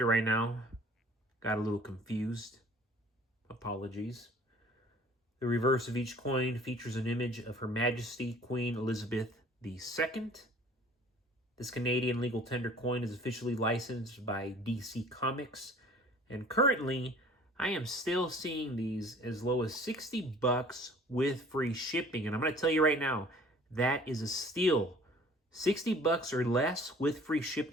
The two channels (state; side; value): normal; both; correlation 0.51